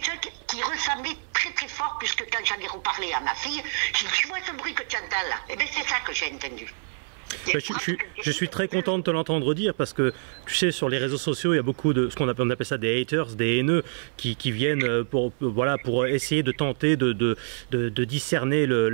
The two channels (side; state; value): left; silent; 57 dB below the other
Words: chose qui ressemblait très très fort, puisque quand j'en ai reparlé à ma fille, j'ai dit, tu vois ce bruit que tu entends là? Eh bien c'est ça que j'ai entendu. Je suis très content de te l'entendre dire parce que tu sais, sur les réseaux sociaux il y a beaucoup de ce qu'on appelle ça des haters, des haineux qui viennent pour essayer de tenter de discerner